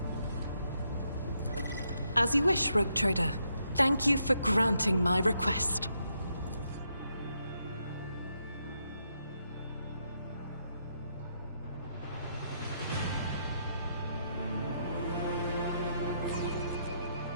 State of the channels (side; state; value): both; inverted; correlation -0.78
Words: As you wish, rogue trader. Thank you for granting my request.